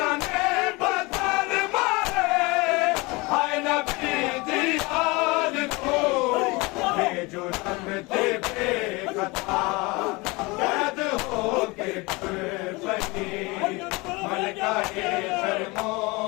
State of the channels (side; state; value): right; quieter; 25.0 dB